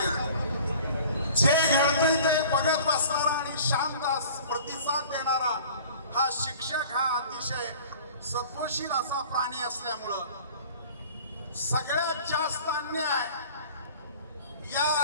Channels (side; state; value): both; inverted; correlation -0.46